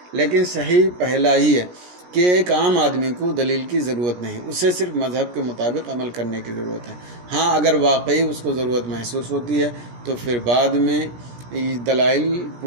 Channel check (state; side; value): late; left; 17 ms